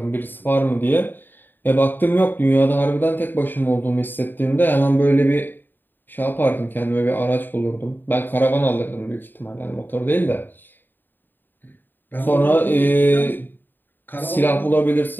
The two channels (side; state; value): right; late; 0.093 ms